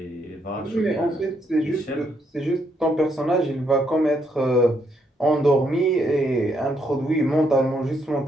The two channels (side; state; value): both; normal; correlation 0.75